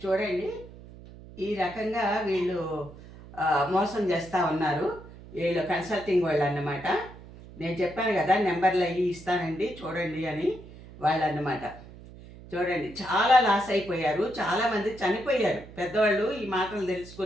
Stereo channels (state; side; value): noise; right; hum, 18 dB below the sound